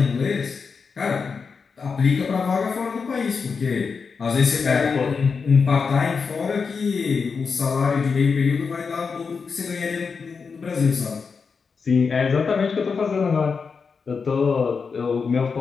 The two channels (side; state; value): right; quieter; 5.3 dB